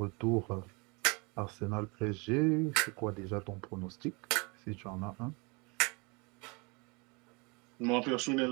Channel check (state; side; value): quieter; left; 29.5 dB